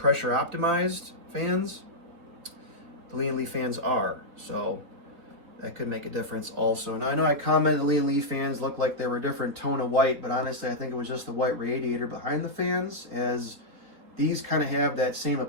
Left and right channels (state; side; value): late; left; 3.5 ms